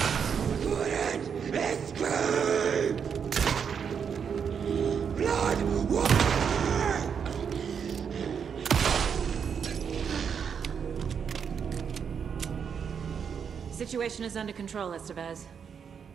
Couldn't escape! Blood water! Situation is under control, Estevez.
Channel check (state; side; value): quieter; left; 7.0 dB